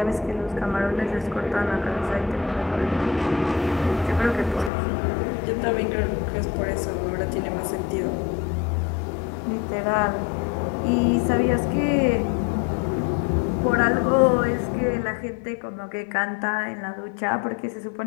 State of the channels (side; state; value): right; drops out; at 4.7 s